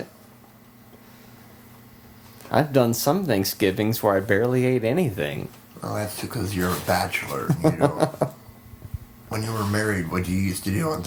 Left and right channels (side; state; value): both; identical; correlation 1.00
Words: I've done some Thanksgivings where I barely ate anything. Well, that's because you're a bachelor. You know. When you were married, what you used to do on